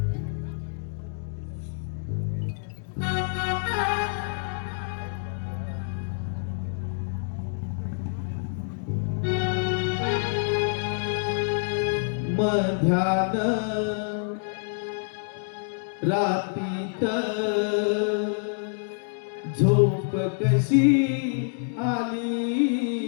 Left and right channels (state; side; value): silent; right; digital silence